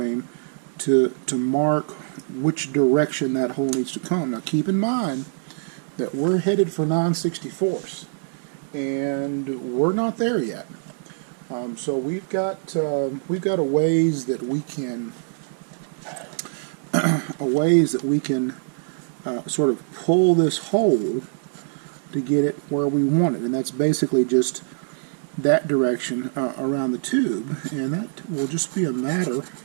to mark which direction that hole needs to come. Now keep in mind that we're headed for 9/64ths, and we're not there yet. So we've got a ways that we can sort of pull this hole to get it where we want it, and that's basically just that direction around the tube, and that will just be a matter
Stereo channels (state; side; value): silent; left; digital silence